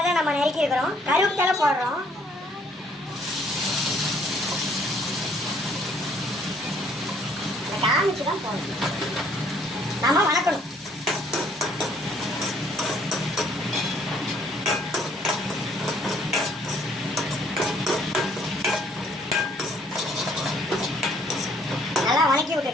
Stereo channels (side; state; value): both; normal; correlation 0.63